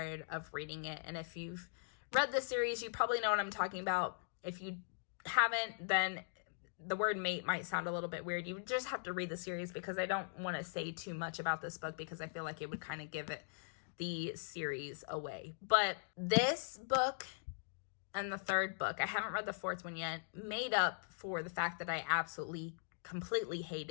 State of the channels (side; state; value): right; silent; digital silence